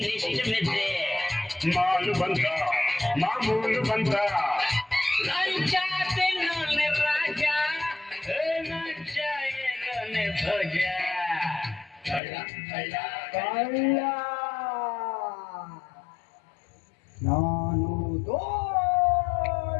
ಮೆದ್ದೆ ಮಾಲು ಬಂತ ಮಾಮೂಲು ಬಂತ ಲಂಚ ತಿನ್ನೋನೆ ರಾಜ ಲಂಚ ಏನೋನೆ ಭೋಜ ಕಳ್ಳ ಕಳ್ಳ ಕಳ್ಳ ನಾನು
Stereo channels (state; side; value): drops out; right; at 12.2 s